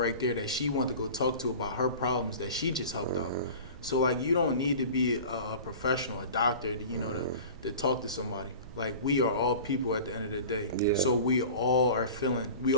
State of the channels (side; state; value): both; inverted; correlation -0.39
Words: there that she wanted to go talk to about her problems that she just helped out. So like you don't need to be a professional, a doctor, to, you know, to talk to somebody. Like we are all people at the end of the day. Yeah. So we all have